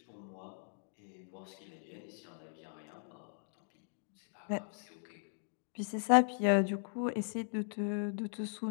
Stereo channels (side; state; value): right; silent; digital silence